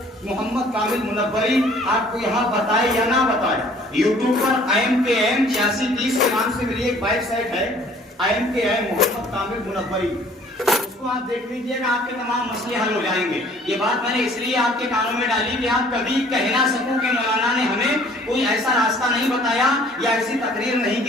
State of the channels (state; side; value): normal; both; correlation 0.55